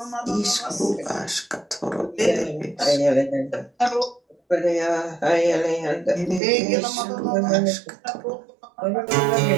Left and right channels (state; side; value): drops out; left; at 6.4 s